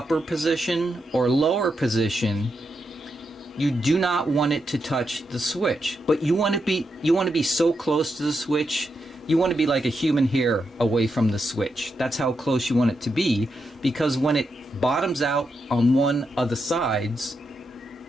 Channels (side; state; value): both; normal; correlation 0.84